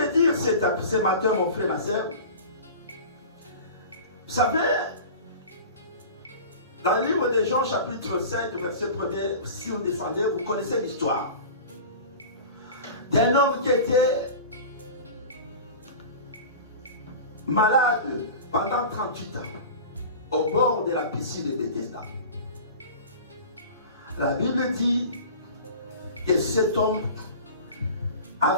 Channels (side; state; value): both; inverted; correlation -0.36